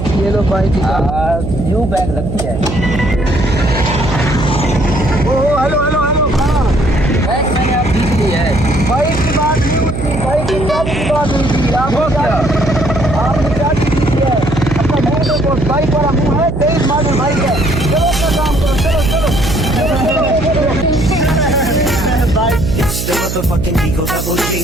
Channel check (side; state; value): right; noise; hum, 5 dB below the sound